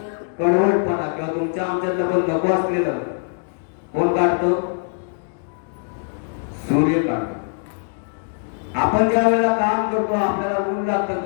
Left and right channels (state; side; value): silent; right; digital silence